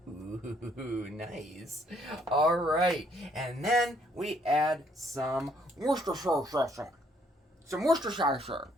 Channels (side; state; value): both; normal; correlation 0.67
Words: Ooh, nice. All right, and then we add some Worcestershire.